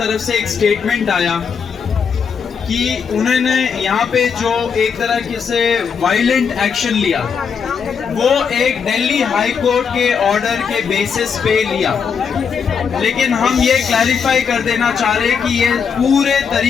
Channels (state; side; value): quieter; right; 6.4 dB